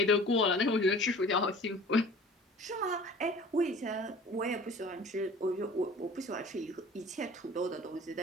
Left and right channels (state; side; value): normal; both; correlation 0.44